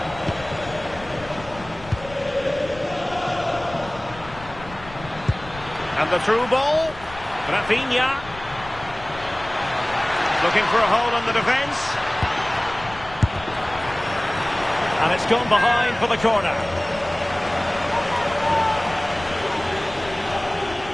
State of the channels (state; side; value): noise; left; rumble, 17 dB below the sound